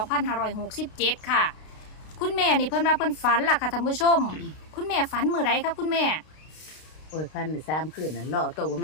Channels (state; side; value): late; right; 32 ms